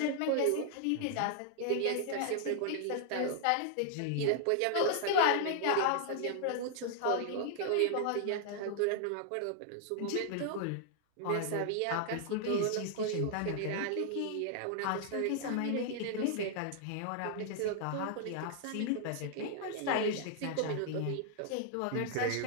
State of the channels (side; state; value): both; different; correlation -0.01